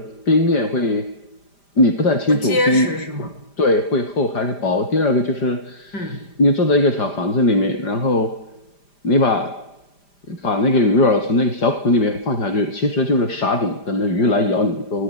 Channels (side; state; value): right; late; 5.0 ms